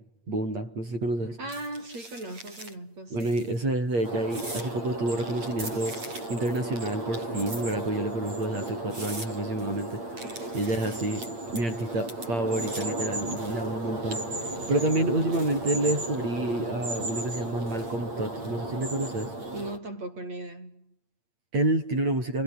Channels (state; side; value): late; left; 8.6 ms